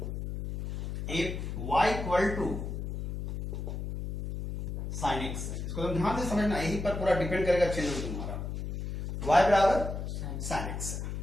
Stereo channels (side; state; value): left; noise; hum, 4 dB below the sound